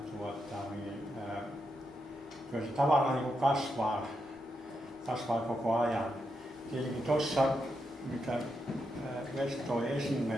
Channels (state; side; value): normal; both; correlation 0.84